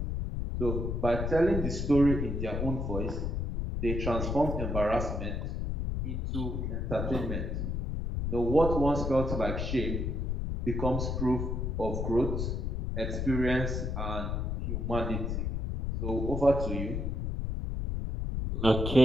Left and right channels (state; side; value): noise; left; rumble, 1 dB below the sound